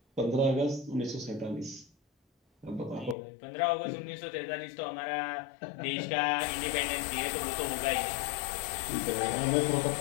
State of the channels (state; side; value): drops out; right; at 3.2 s